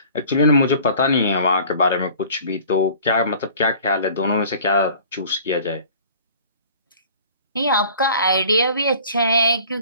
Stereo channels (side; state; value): both; inverted; correlation -0.48